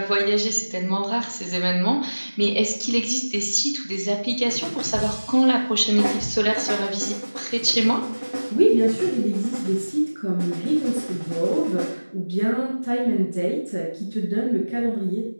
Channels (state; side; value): inverted; both; correlation -1.00